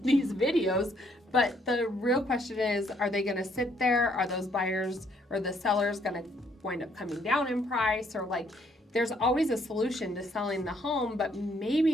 these videos. But the real question is, are they going to sit there? Are those buyers or the sellers going to wind up coming down in price? Or like, there's always a solution to selling the home, but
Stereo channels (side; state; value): both; normal; correlation 0.68